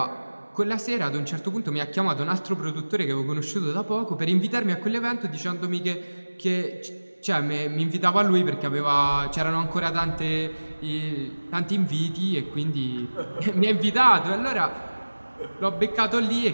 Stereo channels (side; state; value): both; inverted; correlation -1.00